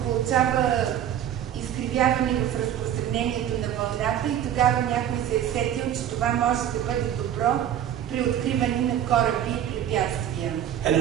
получава изкривяване в разпространението на вълната и тогава някой се е сетил, че това може да бъде добро при откриване на кораби и препятствия. And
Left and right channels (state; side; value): quieter; left; 10.5 dB